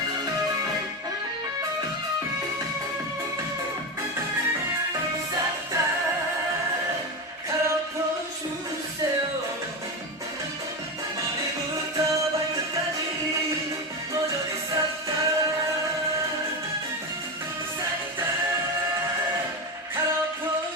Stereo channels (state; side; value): normal; both; correlation 0.17